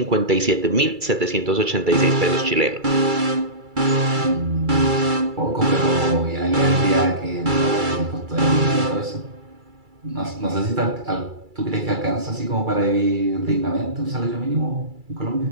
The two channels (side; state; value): left; late; 2.3 ms